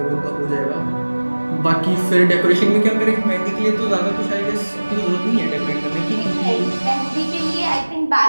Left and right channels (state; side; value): inverted; both; correlation -1.00